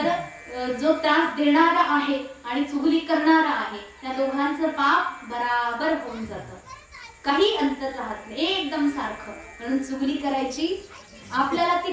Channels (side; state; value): both; identical; correlation 1.00